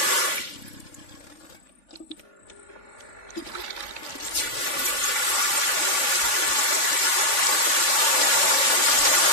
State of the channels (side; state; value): right; late; 3.5 ms